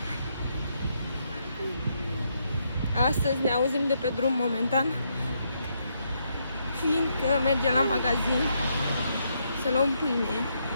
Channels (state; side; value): inverted; both; correlation -0.77